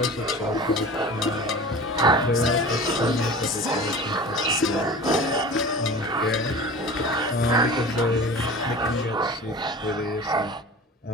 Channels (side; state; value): both; normal; correlation 0.37